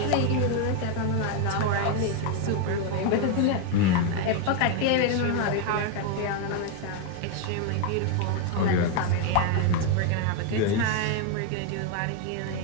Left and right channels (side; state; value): both; different; correlation 0.01